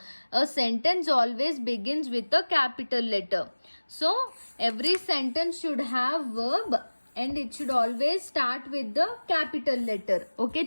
A sentence always begins with a capital letter. So every sentence should have verb and it should always start with the capital letter.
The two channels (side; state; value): both; inverted; correlation -1.00